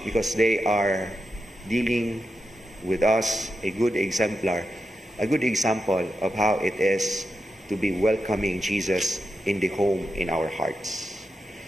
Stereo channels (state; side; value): normal; both; correlation 0.88